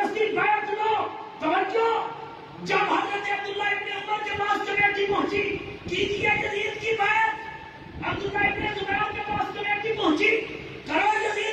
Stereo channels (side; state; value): both; identical; correlation 1.00